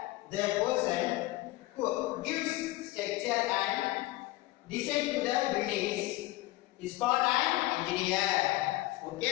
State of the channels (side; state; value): right; quieter; 18.4 dB